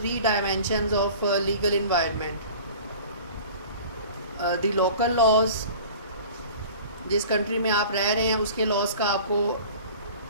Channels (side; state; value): both; inverted; correlation -0.43